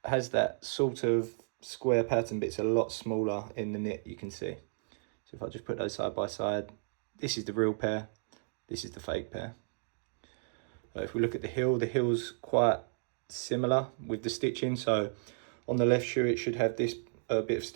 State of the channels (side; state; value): left; silent; digital silence